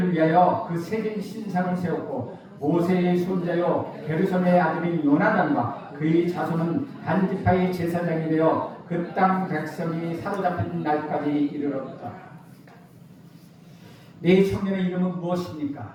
위하여 그 새긴 신상을 세웠고 모세의 손자요 게르솜의 아들인 요나단과 그의 자손은 단 지파의 제사장이 되어 그 땅 백성이 사로잡힌 날까지 이르렀다. 네 청년의 이름은 무엇입니까?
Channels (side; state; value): both; identical; correlation 1.00